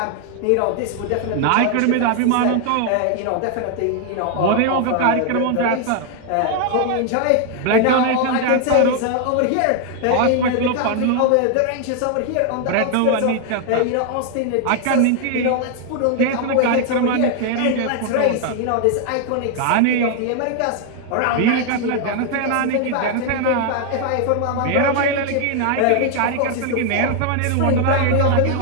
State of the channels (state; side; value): different; both; correlation 0.00